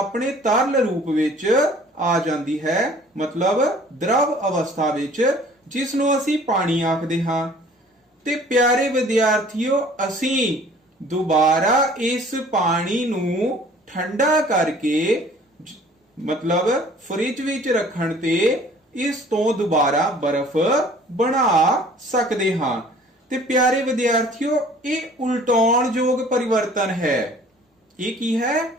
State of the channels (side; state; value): both; normal; correlation 0.52